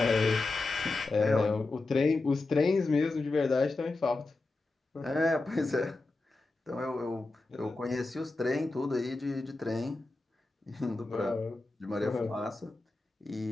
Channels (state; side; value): quieter; right; 3.3 dB